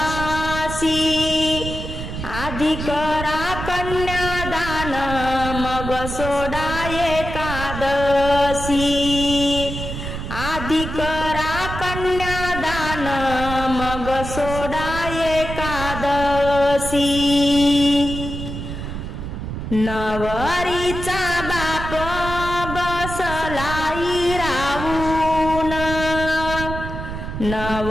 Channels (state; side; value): noise; right; rumble, 7 dB below the sound